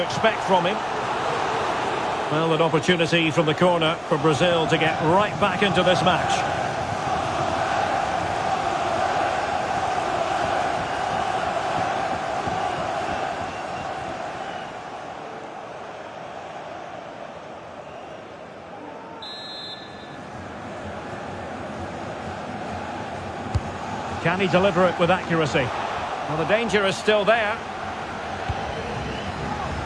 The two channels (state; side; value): identical; both; correlation 1.00